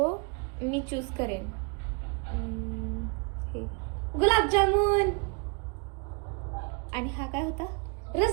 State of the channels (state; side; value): quieter; left; 33.5 dB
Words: मी चूज करेन. हे. गुलाबजामुन आणि हा काय होता?